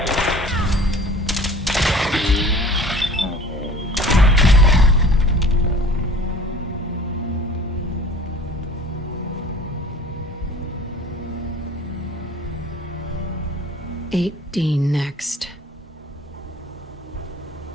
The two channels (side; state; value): both; normal; correlation 0.46